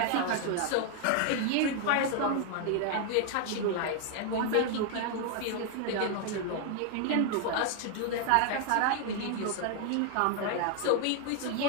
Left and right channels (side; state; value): both; different; correlation 0.00